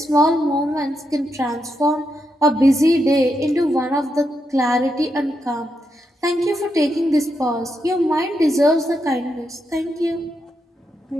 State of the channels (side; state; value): both; normal; correlation 0.83